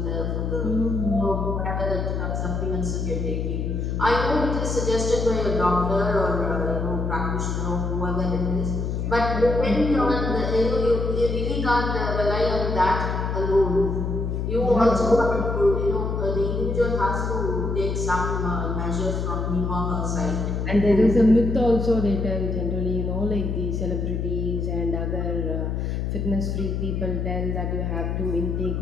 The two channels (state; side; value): noise; left; hum, 1 dB below the sound